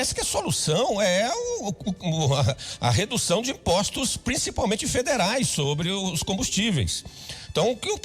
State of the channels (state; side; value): identical; both; correlation 1.00